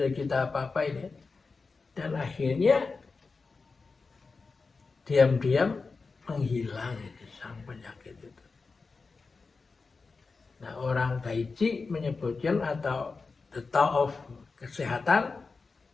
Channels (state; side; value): quieter; right; 4.3 dB